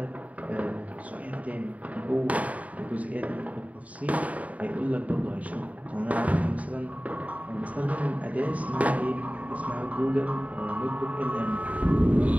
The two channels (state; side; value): late; left; 0.069 ms